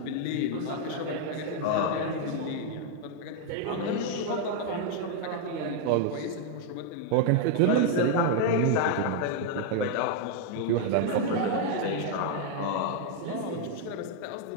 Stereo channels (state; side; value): different; both; correlation 0.00